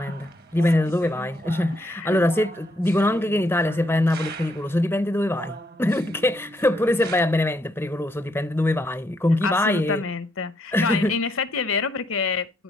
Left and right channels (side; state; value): both; normal; correlation 0.74